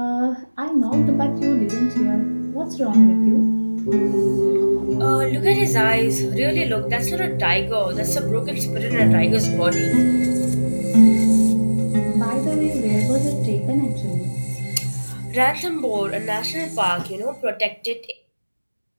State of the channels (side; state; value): both; inverted; correlation -1.00